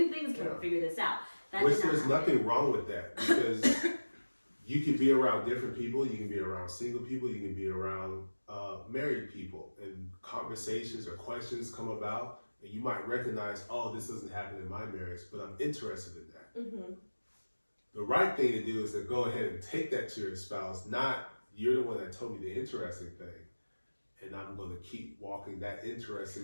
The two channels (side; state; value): both; inverted; correlation -1.00